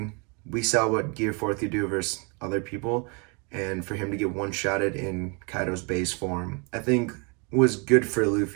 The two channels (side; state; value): left; quieter; 33.3 dB